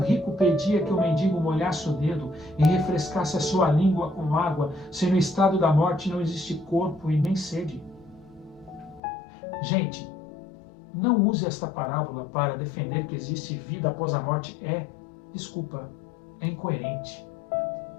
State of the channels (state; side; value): drops out; right; at 9.0 s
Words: pedia que o mendigo molhasse o dedo e refrescasse a sua língua com água, se no estado da morte não existe corpo e nem sede? Gente, não use esta parábola para defender que existe vida após a morte. É incoerente.